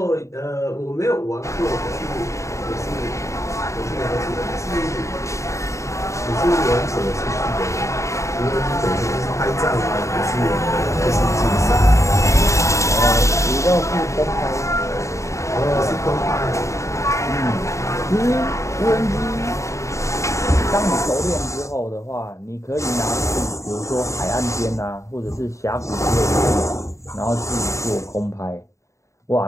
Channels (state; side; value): late; right; 0.15 ms